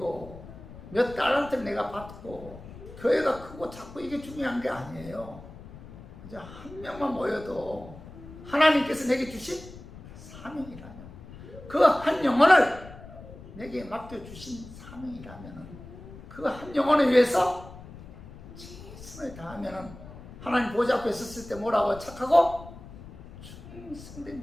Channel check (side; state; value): left; noise; rumble, 16 dB below the sound